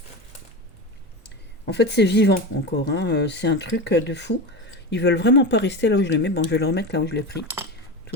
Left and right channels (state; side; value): normal; both; correlation 0.23